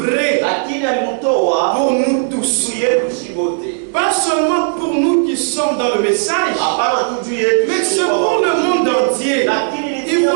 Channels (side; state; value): left; silent; 69 dB below the other